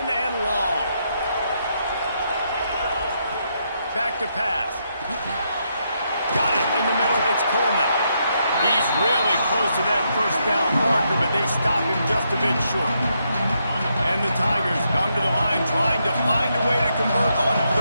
and long. Back to pass. Got it in the middle. It's Coleman. He's really close to that 1st down marker, but they stop him just a bit short. And the Tigers come to the line trying to find a way to convert on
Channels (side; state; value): both; inverted; correlation -0.79